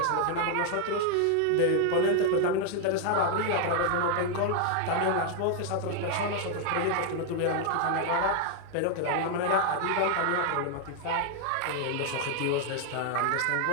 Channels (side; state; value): both; different; correlation 0.00